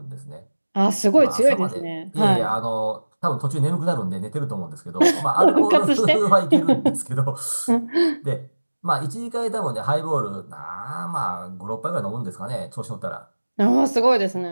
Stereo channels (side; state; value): both; inverted; correlation -1.00